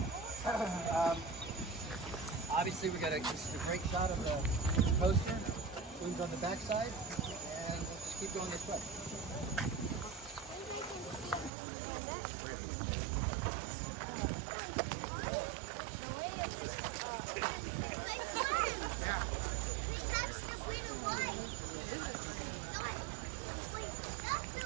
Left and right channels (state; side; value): drops out; left; at 11.5 s